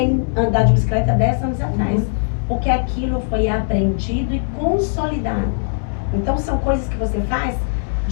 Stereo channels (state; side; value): silent; right; digital silence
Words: andar de bicicleta 10 anos atrás. Porque aquilo foi aprendido e consolidado. Então, são coisas que você faz